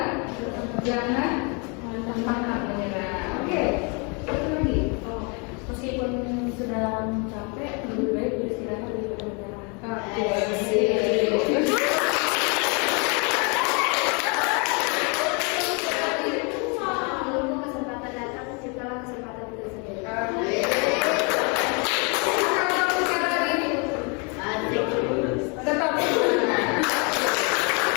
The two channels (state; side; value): quieter; right; 33.5 dB